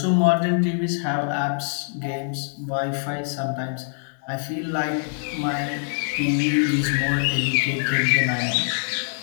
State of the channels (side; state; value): right; silent; digital silence